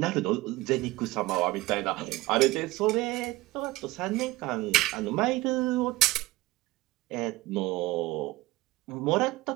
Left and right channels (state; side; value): quieter; left; 19.4 dB